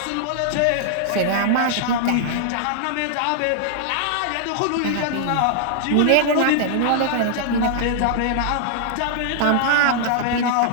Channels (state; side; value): different; both; correlation -0.01